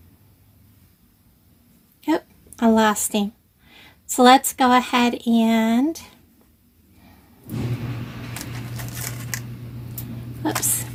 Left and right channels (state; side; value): identical; both; correlation 1.00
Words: Yep, I lost him. So let's go ahead and